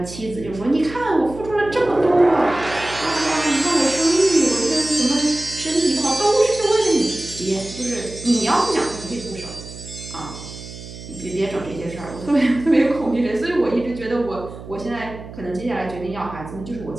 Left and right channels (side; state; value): right; noise; hum, 14 dB below the sound